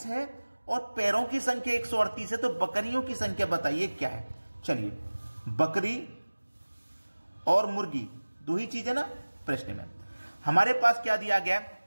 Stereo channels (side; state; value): both; inverted; correlation -1.00